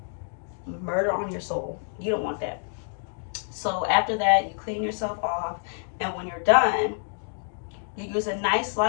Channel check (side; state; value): right; silent; 60 dB below the other